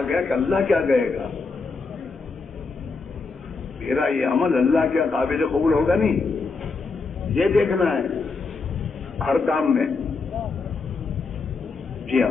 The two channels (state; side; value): quieter; right; 4.3 dB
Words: گیا کہ اللہ کیا کہے گا، میرا یہ عمل اللہ کے قابل قبول ہوگا نہیں، یہ دیکھنا ہے ہر کام میں۔ جی